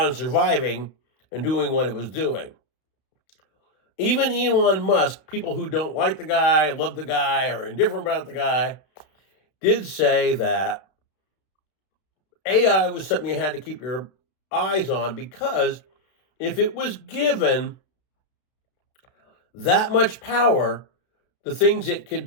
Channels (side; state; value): right; late; 32 ms